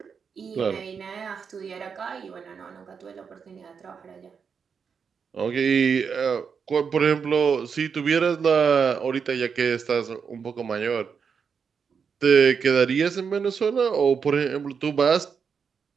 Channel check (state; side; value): quieter; left; 6.3 dB